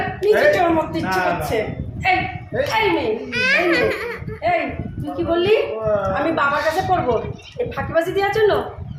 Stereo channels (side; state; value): both; identical; correlation 1.00